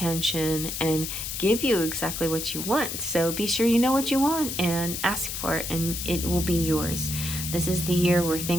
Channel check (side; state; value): left; noise; hiss, 5 dB below the sound